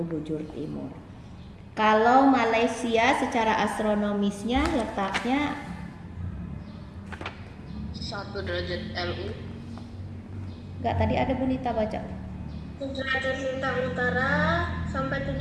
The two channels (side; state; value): both; identical; correlation 1.00